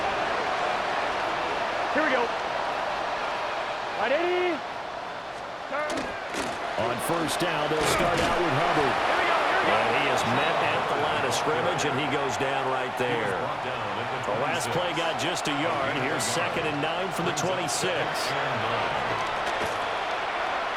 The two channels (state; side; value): identical; both; correlation 1.00